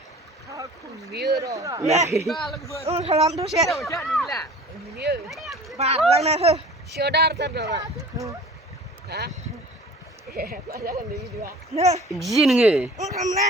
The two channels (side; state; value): both; normal; correlation 0.44